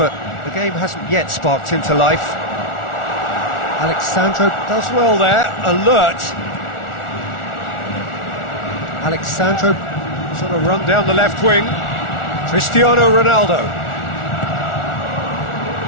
the game hasn't yet sparked into life. Alexandro does well there, alert. Alexandro sort of run down the left wing. Cristiano Ronaldo.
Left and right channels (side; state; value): right; late; 1.4 ms